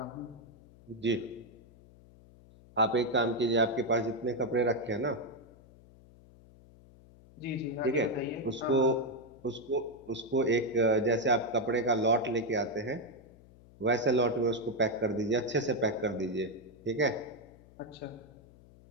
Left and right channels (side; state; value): left; noise; hum, 24 dB below the sound